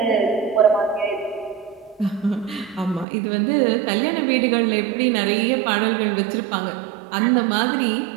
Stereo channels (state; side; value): drops out; left; at 3.1 s